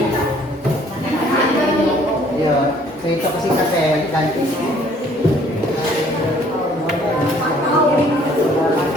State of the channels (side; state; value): both; normal; correlation 0.59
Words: Ya, cerita singkat saya ganti.